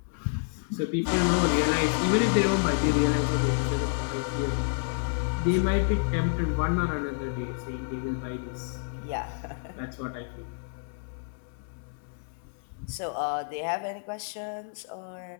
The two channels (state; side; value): silent; right; 59 dB below the other